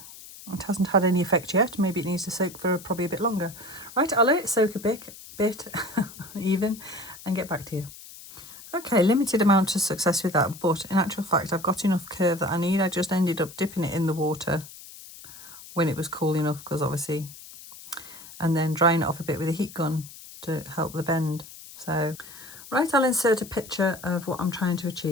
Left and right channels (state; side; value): noise; left; hiss, 17 dB below the sound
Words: It hasn't had any effect yet. Maybe it needs to soak for probably a bit longer. Right, I'll let it soak a bit even, and get back to you. Okay, limited amount of success with that, but in actual fact I've got enough curve that I need. I just ended up dipping it in the water when it was cool enough, because obviously, and then drying it off a bit with a heat gun to help the bend. So, right, I'll insert a picture of what I'm trying to